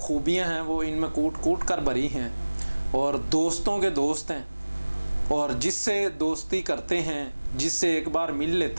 ہیں وہ ان میں کوٹ کوٹ کر بھری ہیں، اور دوستوں کے دوست ہیں، اور جس سے دوستی کرتے ہیں، جس سے ایک بار مل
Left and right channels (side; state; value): both; inverted; correlation -1.00